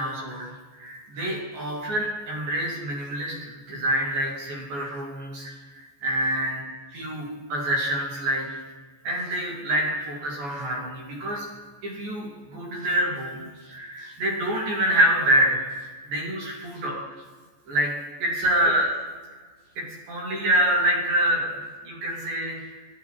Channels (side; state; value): left; late; 14 ms